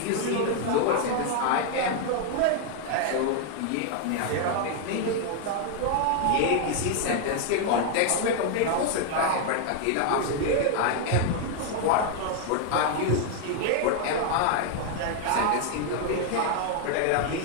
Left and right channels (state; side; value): different; both; correlation 0.00